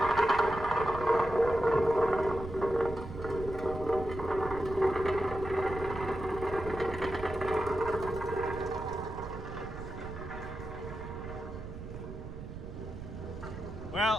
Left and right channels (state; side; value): noise; right; rumble, 10 dB below the sound